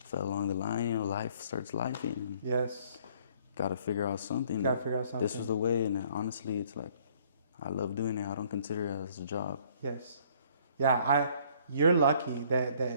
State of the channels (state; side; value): inverted; both; correlation -0.60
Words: along the line, you know. Life starts lifing. Got to figure out something. This was the way, and honestly, it's like, I love doing it. I don't consider it as a job. You're lucky